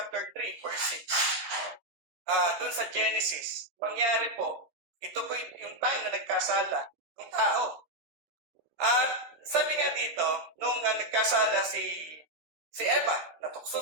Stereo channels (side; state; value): left; late; 13 ms